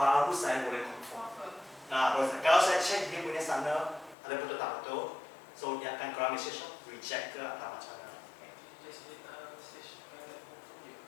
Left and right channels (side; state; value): right; drops out; at 4.2 s